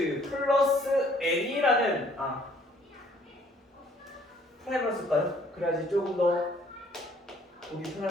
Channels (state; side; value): normal; both; correlation 0.61